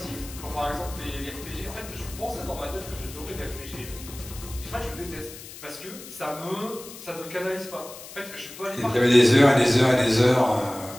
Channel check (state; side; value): noise; left; hiss, 15 dB below the sound